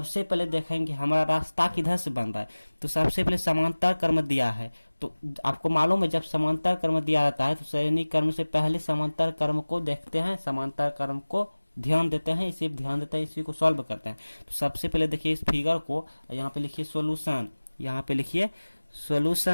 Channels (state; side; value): inverted; both; correlation -1.00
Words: पहले देखेंगे हमारा रास्ता किधर से बन रहा है, तो सबसे पहले समांतर क्रम दिया है, तो आपको मालूम है जब समांतर क्रम दिया रहता है तो श्रेणी क्रम से पहले समांतर क्रम को देखते हैं, समांतर क्रम को ध्यान देते हैं, इसी ध्यान देते हैं, इसी को सॉल्व करते हैं। तो सबसे पहले देखिए इस फिगर को, यहाँ पे लिखिए सोल्यूशन, यहाँ पे लिखिए